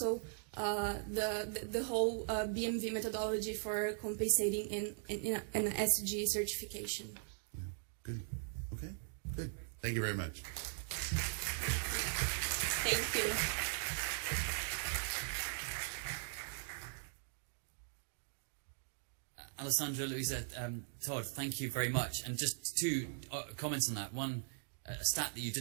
the whole BMV methodology for compensating in an SG certification. Yeah. Good. Okay. Good. Thank you very much. Thank you. Alessandra, Louisa, Todd, thank you very much. And just two comments on that. One, a stat that you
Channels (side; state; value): left; silent; digital silence